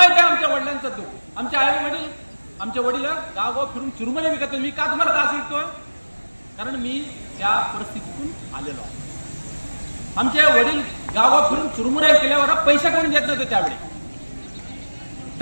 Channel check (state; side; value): inverted; both; correlation -1.00